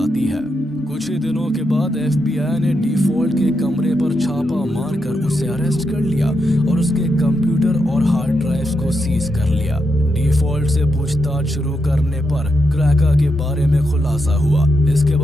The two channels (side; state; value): both; normal; correlation 0.83